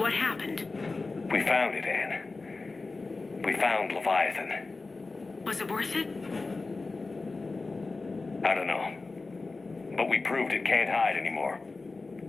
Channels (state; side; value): quieter; right; 3.7 dB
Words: happened? We found it, Anne. We found Leviathan. Was it worth it? I don't know. But we proved it can't hide anymore.